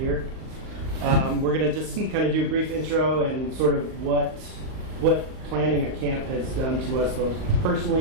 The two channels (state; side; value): late; left; 38 ms